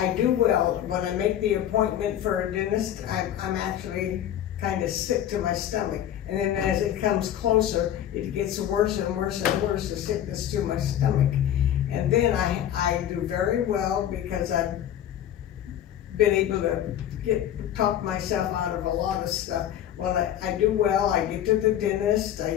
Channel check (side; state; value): right; quieter; 11.0 dB